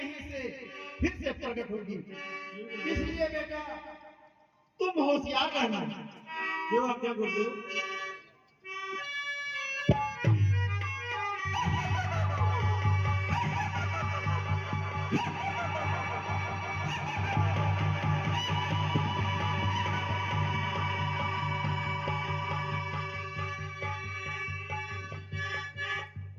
से फिर से प्रकट होगी। इसलिए बेटा तुम होशियार रहना। जो आज्ञा गुरुदेव।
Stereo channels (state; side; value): identical; both; correlation 1.00